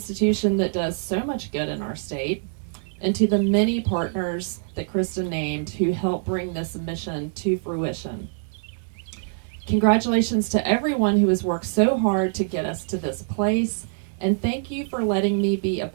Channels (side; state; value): left; silent; digital silence